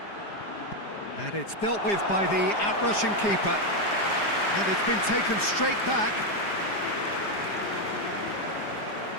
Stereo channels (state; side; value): late; right; 4.9 ms